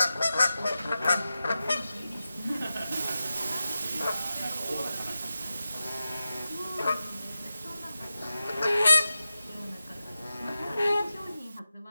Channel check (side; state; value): both; inverted; correlation -0.93